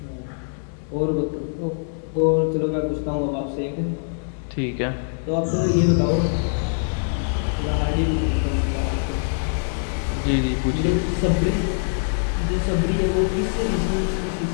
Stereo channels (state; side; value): silent; right; digital silence